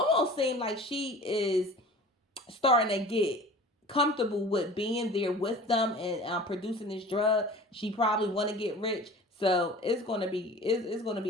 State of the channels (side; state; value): both; normal; correlation 0.41